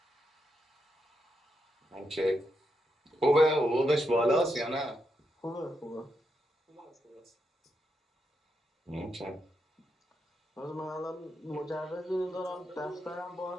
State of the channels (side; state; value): both; normal; correlation 0.83